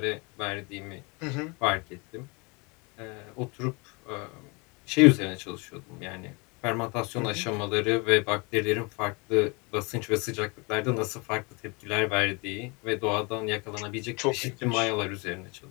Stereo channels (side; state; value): right; quieter; 29.2 dB